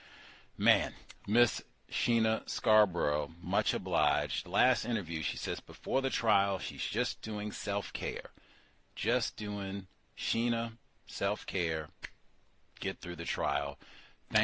Man, Miss Sheena Scarbrough, much obliged. Last interview, she says before the trial, she's just doing self-care. Just doing Sheena self-care, get through the trial.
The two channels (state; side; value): identical; both; correlation 1.00